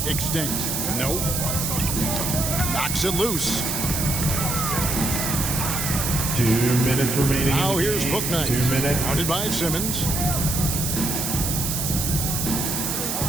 extinct. Nope. Knocks it loose. 2 minutes remaining. Now here's Bouknight. 2 minutes. Guarded by Simmons.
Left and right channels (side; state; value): right; noise; hiss, 1 dB below the sound